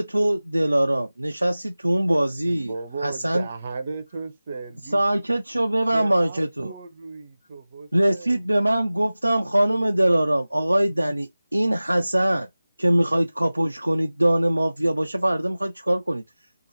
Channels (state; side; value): inverted; both; correlation -0.98